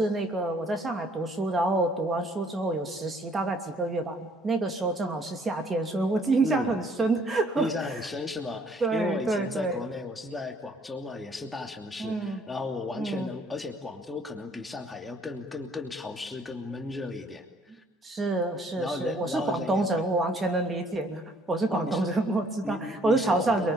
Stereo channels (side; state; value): both; normal; correlation 0.62